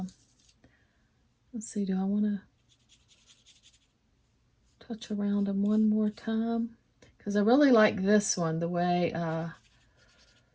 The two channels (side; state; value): both; identical; correlation 1.00